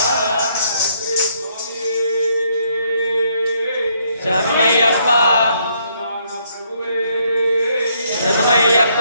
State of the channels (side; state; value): both; inverted; correlation -0.71